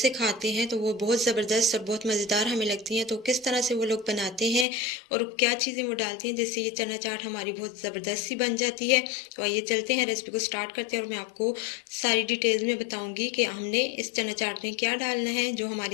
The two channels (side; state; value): right; drops out; at 4.7 s